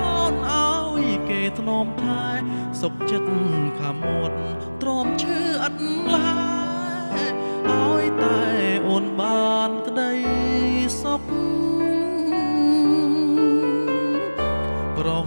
អូនឲ្យគេធ្នមថែសុខចិត្តខាមាត់ទ្រាំឈឺអត់ឡើយឲ្យតែអូនបានក្តីសុខប្រោស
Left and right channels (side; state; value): both; inverted; correlation -1.00